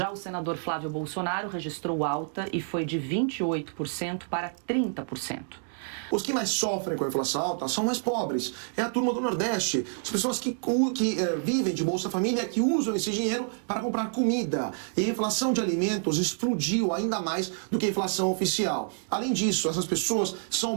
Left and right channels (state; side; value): silent; left; digital silence